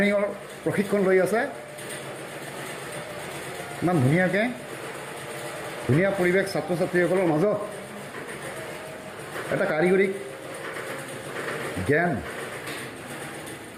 প্ৰশিক্ষণ লৈ আছে। ইমান ধুনীয়াকৈ, ধুনীয়া পৰিৱেশ ছাত্ৰ ছাত্ৰীসকলৰ মাজত এটা কাৰিকৰী জ্ঞান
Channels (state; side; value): identical; both; correlation 1.00